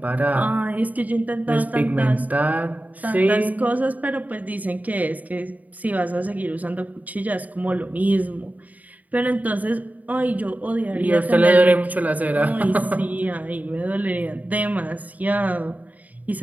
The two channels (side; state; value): left; late; 0.075 ms